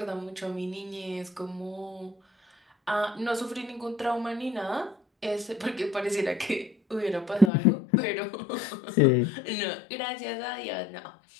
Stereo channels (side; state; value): right; drops out; at 7.5 s